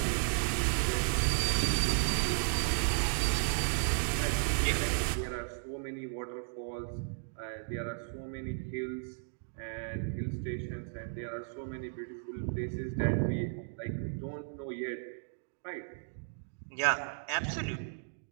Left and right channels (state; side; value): silent; left; digital silence